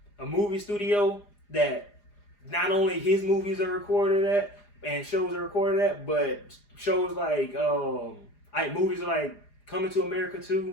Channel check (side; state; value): right; late; 4.9 ms